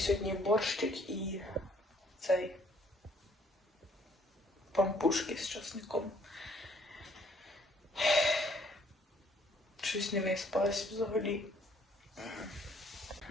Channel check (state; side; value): normal; both; correlation 0.63